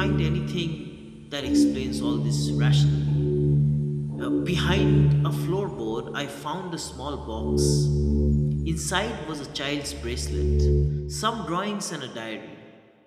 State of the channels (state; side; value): identical; both; correlation 1.00